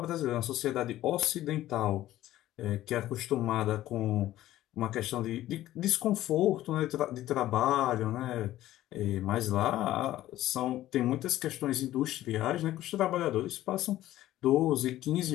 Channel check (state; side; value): quieter; right; 14.4 dB